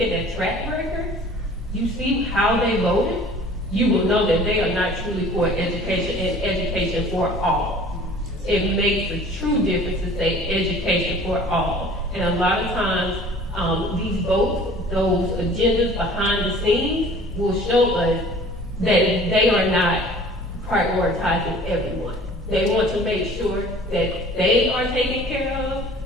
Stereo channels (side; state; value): both; normal; correlation 0.48